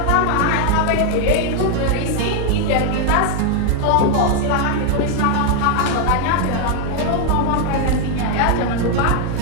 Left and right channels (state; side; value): different; both; correlation 0.00